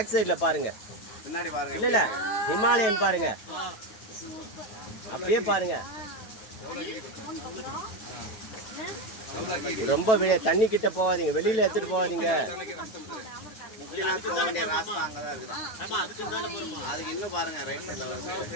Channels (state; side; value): late; right; 9.1 ms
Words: சைடில் பாருங்கள், பின்னாடி பாருங்க. இல்லை ஹிமாலயன் பாருங்க, அப்படியே பாருங்க. ரொம்ப தண்ணி கிட்ட போகாதீங்க, வெளியில எடுத்துட்டு போகாதீங்க. போக வேண்டிய ராஸ்தா அங்கதான் இருக்குது. அதுக்கு இன்னும் பாருங்க, ரைட் சைடுல